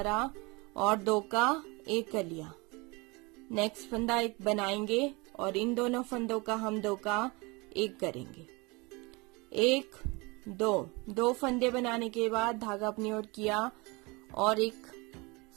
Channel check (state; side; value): quieter; left; 26.2 dB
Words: और 2 का 1 कर लिया। नेक्स्ट फंदा 1 बनाएंगे और इन दोनों फंदों का हम 2 का 1 करेंगे। 1 2 फंदे बनाने के बाद धागा अपनी ओर किया और एक